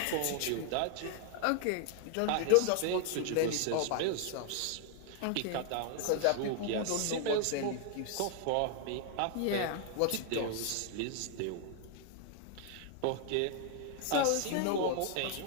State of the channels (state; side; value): different; both; correlation 0.00